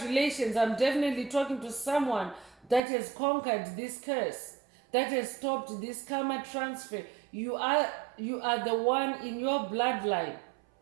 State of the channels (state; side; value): drops out; left; at 2.8 s